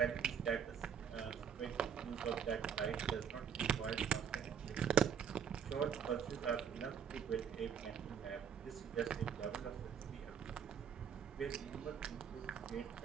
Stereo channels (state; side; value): quieter; left; 7.7 dB